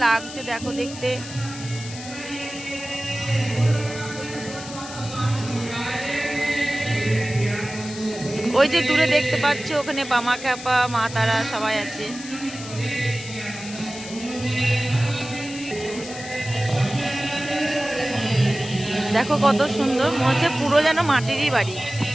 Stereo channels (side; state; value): left; noise; hiss, 13 dB below the sound